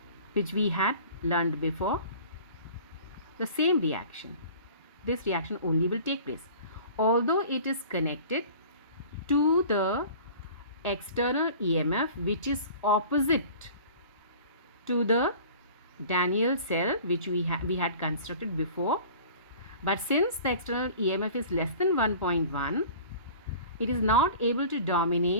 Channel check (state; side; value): inverted; both; correlation -0.44